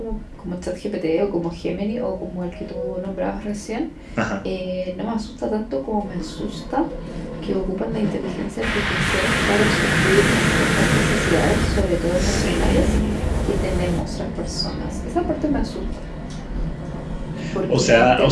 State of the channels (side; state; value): both; identical; correlation 1.00